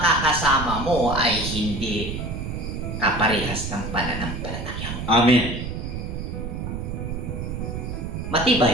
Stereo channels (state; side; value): noise; right; rumble, 5 dB below the sound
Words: mo ay hindi kaparehas ng pananampalataya mo. Amen.